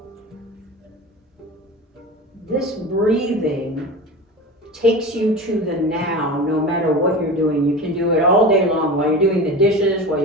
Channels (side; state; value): both; normal; correlation 0.30